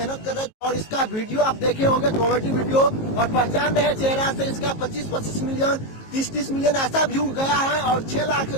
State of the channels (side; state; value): right; late; 18 ms